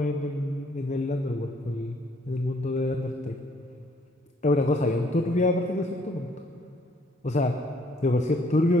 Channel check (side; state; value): both; normal; correlation 0.65